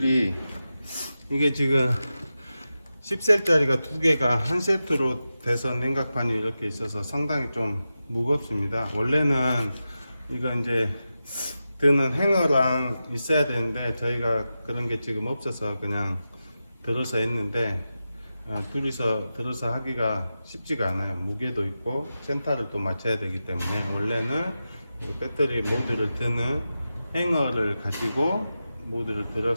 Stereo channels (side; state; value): both; inverted; correlation -0.92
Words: 이게 지금 10셀짜리가 두 개가 한 세트로 돼서 냉각판이 이렇게 있어서 상당히 좀 무겁습니다. 원래는 이거 이제 드는 행어랑 있어야 되는데 저희가 그런 게 지금 없어서 그냥 들어서 했는데 둘이서 들어서 하기가 쉽지가 않아요. 무게도 있고 센터를 또 맞춰야 되기 때문에 원래는 배터리 모듈을 드는 행어를 가지고 모듈을